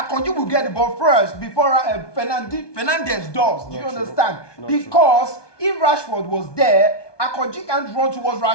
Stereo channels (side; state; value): right; late; 1.2 ms